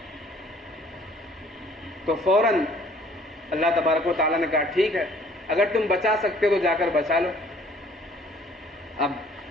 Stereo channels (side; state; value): both; normal; correlation 0.56